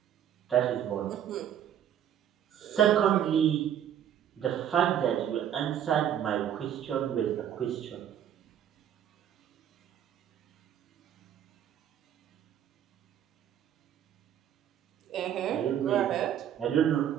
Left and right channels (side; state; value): left; quieter; 10.0 dB